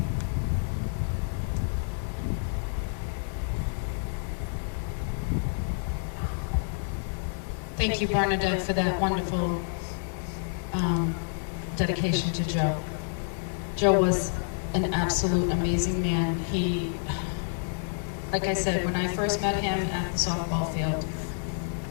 Thank you, Bernadette, for that wonderful dedication to Joe. Joe was an absolute amazing man. He, like I said, when I first met him at the softball field,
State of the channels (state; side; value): silent; right; digital silence